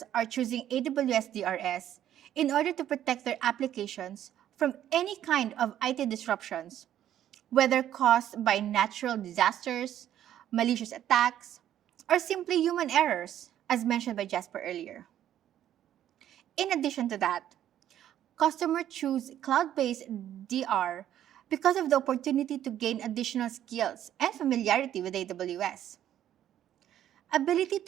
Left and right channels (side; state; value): left; quieter; 11.3 dB